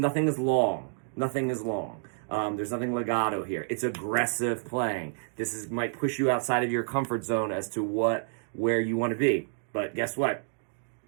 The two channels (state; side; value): silent; left; digital silence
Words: is long. There's nothing legato here. It's aggressive playing. This might push you outside of your comfort zone as to where you want to be. But guess what?